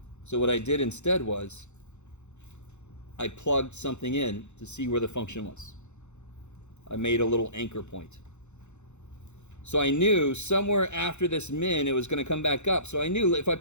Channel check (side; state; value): right; late; 0.83 ms